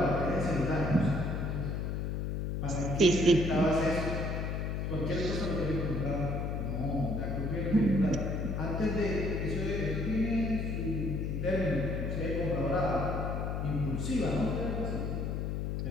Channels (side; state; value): left; noise; hum, 1 dB below the sound